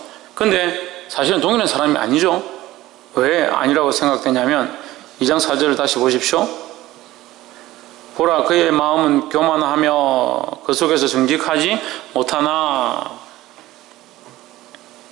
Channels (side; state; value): left; quieter; 16.5 dB